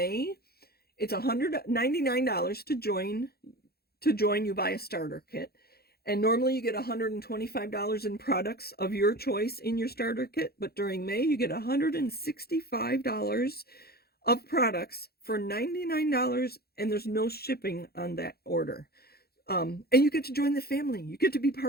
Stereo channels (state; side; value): late; right; 0.46 ms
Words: It's $199 to join. You buy a starter kit. And normally you get $125 in products of your choice in your starter kit. But during May, you get $165 of products for $99, and there's no shipping on that order. And you get to join the family. You get to be